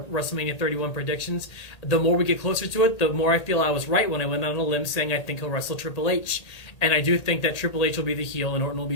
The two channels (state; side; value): late; right; 1.8 ms